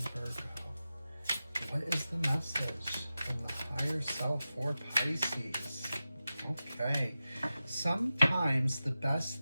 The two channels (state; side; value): inverted; both; correlation -0.93